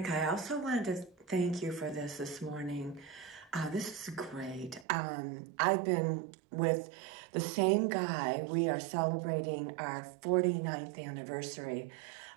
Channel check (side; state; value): left; drops out; at 4.9 s